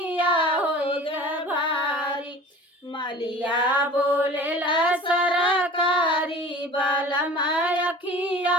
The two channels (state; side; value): normal; both; correlation 0.42